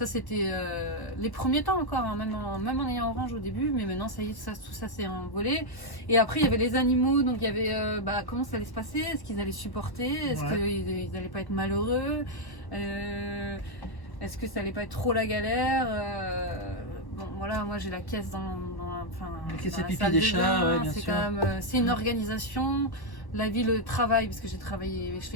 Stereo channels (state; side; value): late; right; 1.1 ms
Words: c'était les premiers temps encore, hein, même en ayant Orange au début, mais maintenant, ça y est, tout ça s'est envolé. Et après, il y avait les animaux, donc il y avait comment ça allait se passer, est-ce qu'ils allaient supporter, est-ce Ouais. qu'ils n'allaient pas être malheureux. Est-ce que ça allait pas être trop la galère bon, voilà, moi j'ai la caisse dans La caisse dans à la pipi salle des de chats, bain. ouais, bien C'est sûr. quand même, c'est une organisation. La vie, le travail, parce que j'ai travaillé, je